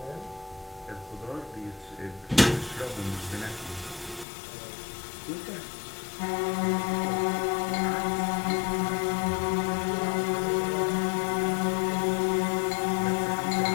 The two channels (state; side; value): drops out; right; at 4.2 s